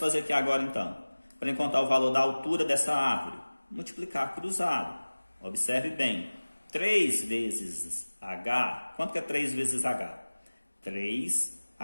aqui agora, então? Para encontrar o valor da altura dessa árvore? Multiplicar cruzado. Observe bem. 3 vezes H, quanto que é 3 vezes H?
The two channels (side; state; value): both; inverted; correlation -1.00